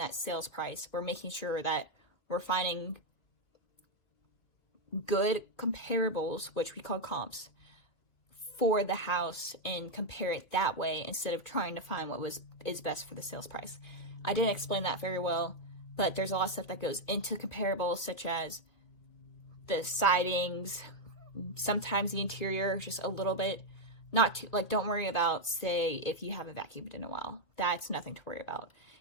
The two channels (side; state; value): right; late; 2.4 ms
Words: sales price. We're making sure that we're finding good comparables, which we call comps, for the house and compare it that way, instead of trying to find what is best for the sales price. I didn't explain that very well, but there's a lot of stuff that goes into comparables, such as the sidings, sometimes the interior, just a little bit. Not too, like, don't worry about, say, if you haven't vacuumed in a while. That's nothing to worry about.